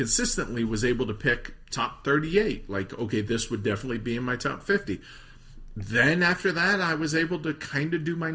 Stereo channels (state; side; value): identical; both; correlation 1.00